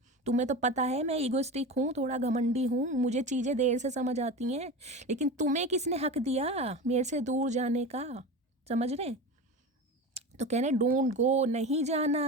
तुम्हें तो पता है मैं ईगोइस्टिक हूँ, थोड़ा घमंडी हूँ, मुझे चीज़ें देर से समझ आती हैं। लेकिन तुम्हें किसने हक दिया मेरे से दूर जाने का? समझ रहे हैं? तो कह रहे डोंट गो, नहीं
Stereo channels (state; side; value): normal; both; correlation 0.28